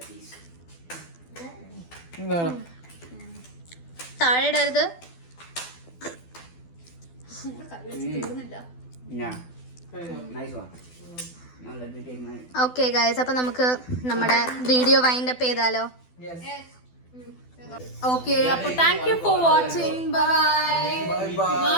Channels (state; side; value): late; right; 12 ms